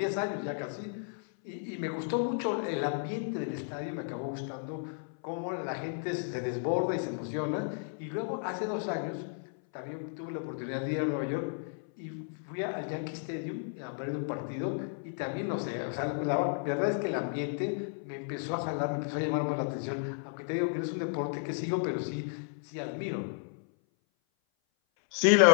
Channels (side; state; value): right; silent; 55 dB below the other